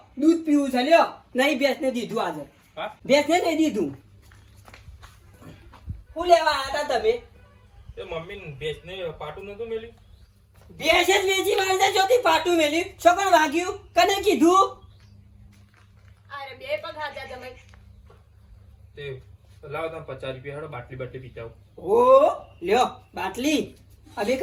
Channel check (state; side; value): identical; both; correlation 1.00